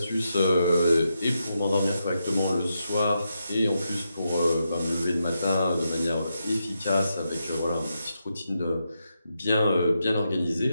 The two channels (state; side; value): inverted; both; correlation -0.84